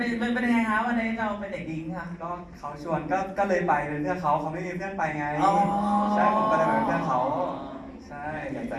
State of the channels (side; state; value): both; identical; correlation 1.00